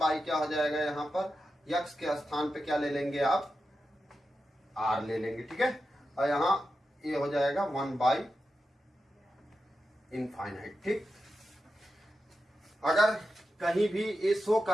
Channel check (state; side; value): normal; both; correlation 0.90